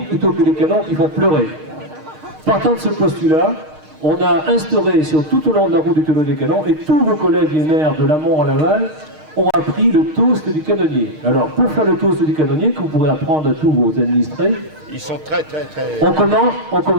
plutôt que les canons qui font pleurer. Partant de ce postulat, on a instauré sur tout au long de la route du tonneau des canons, et tous vos collègues les maires de l'amont à l'aval ont appris le toast du canonnier. Alors, pour faire le toast du canonnier, que vous pourrez apprendre à tous vos administrés, Ils sont très... on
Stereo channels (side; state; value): left; late; 6.5 ms